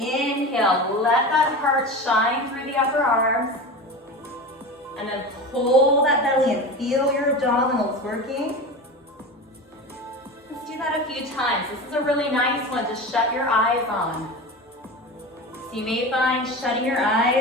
let that heart shine through the upper arms. And then pull that belly and feel your abdominals working. Let's do that a few times. This is a really nice one to shut your eyes on. So you may find shutting your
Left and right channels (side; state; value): both; normal; correlation 0.28